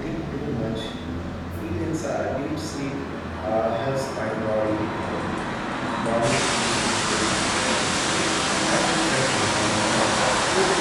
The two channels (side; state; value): both; identical; correlation 1.00